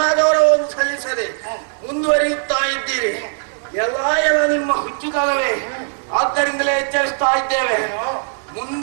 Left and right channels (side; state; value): left; silent; 67 dB below the other